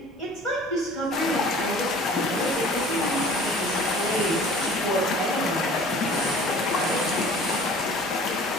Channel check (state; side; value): normal; both; correlation 0.47